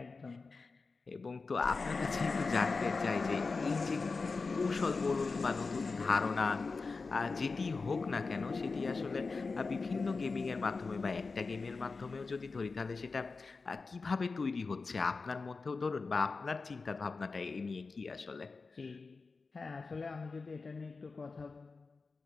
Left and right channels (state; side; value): quieter; right; 4.2 dB